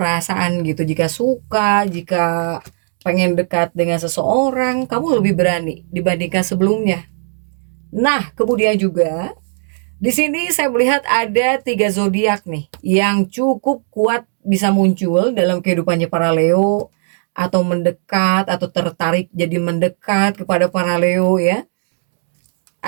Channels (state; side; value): silent; left; digital silence